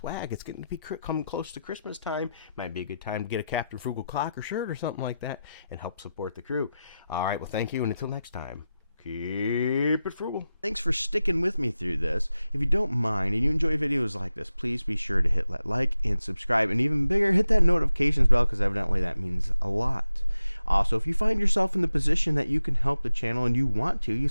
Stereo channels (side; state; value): both; inverted; correlation -0.92